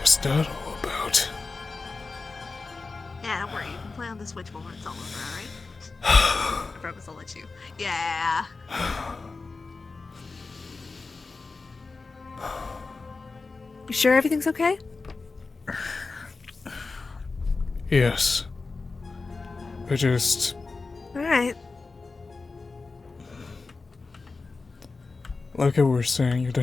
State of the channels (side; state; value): right; quieter; 4.0 dB